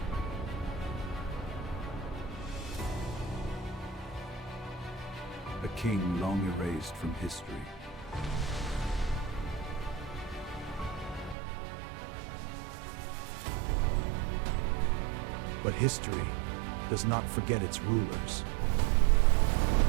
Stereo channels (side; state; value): left; drops out; at 11.4 s